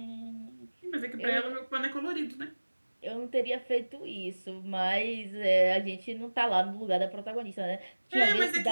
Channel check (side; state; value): both; inverted; correlation -1.00